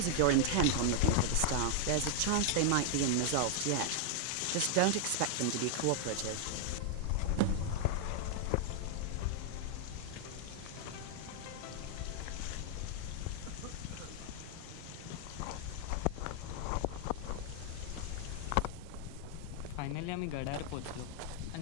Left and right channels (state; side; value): different; both; correlation 0.00